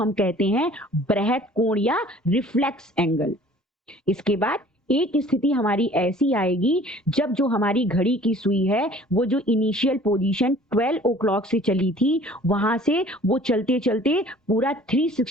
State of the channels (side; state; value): both; normal; correlation 0.51